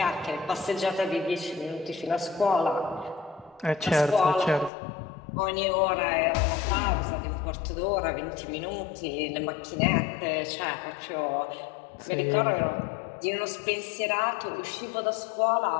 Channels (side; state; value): right; drops out; at 4.7 s